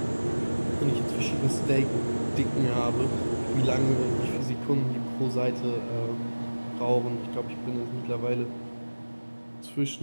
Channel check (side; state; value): both; inverted; correlation -1.00